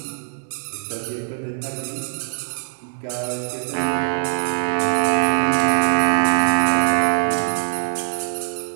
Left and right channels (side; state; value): left; silent; digital silence